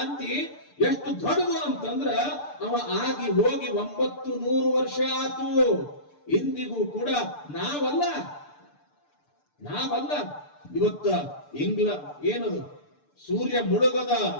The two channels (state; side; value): late; right; 6.8 ms